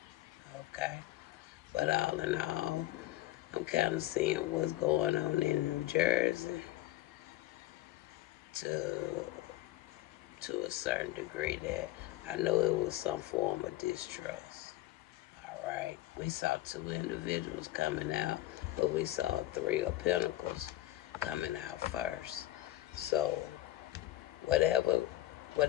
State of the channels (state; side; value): quieter; right; 15.7 dB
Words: Okay. But all in all, I'm kind of seeing what's going on in New Jersey to a certain degree, that I know it was some form of distrust. All right. We saw 2 individuals coming out, but we saw 3 of Pentacles coming out first. So whatever